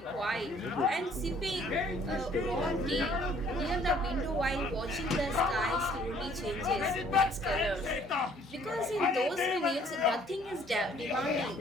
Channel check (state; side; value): normal; both; correlation 0.59